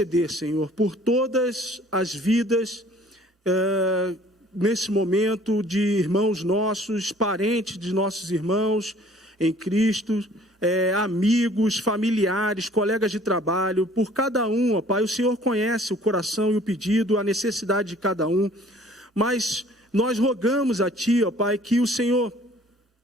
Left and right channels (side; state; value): both; normal; correlation 0.54